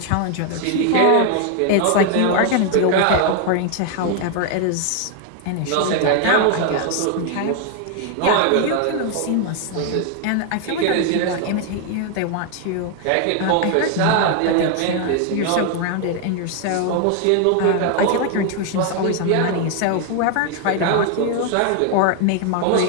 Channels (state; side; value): different; both; correlation 0.00